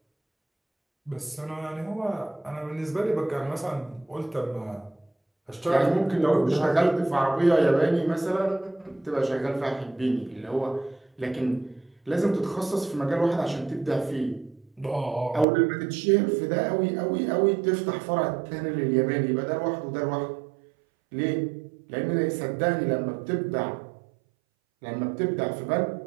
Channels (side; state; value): left; drops out; at 15.5 s